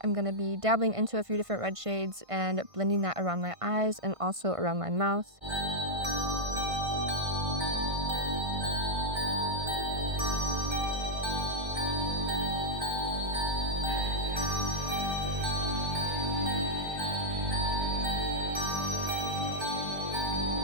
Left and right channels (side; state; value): left; late; 1.5 ms